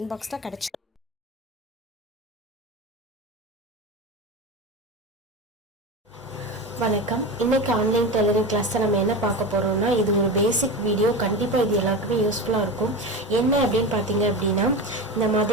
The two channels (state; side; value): normal; both; correlation 0.25